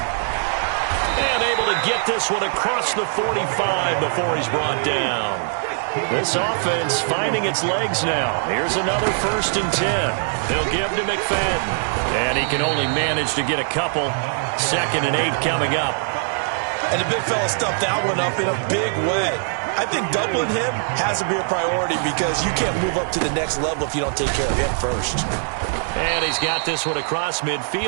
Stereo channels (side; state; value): left; silent; 64 dB below the other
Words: And able to get this one across the 45 before he's brought down. This offense finding its legs now. Here's another 1st and 10. They'll give to McFadden. And he can only manage to get a couple. 2nd and 8 coming up. And the big fella stuffed that one up in a big way. I think doubling him has to be a priority, because you can't move up to the next level if you don't take care of him first. And he's got this one across